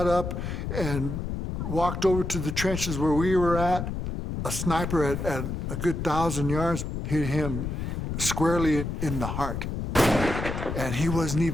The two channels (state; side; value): noise; left; rumble, 4 dB below the sound